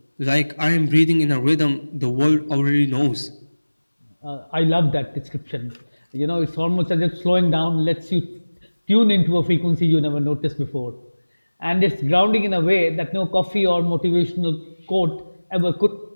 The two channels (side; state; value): both; inverted; correlation -1.00